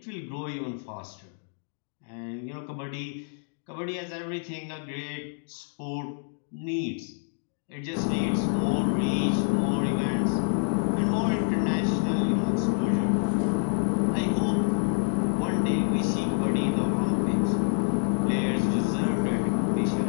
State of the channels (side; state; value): right; silent; digital silence